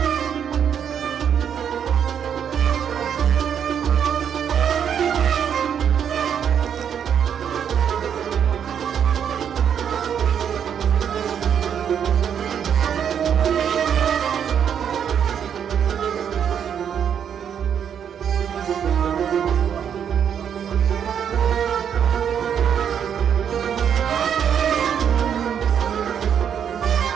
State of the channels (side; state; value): left; quieter; 8.3 dB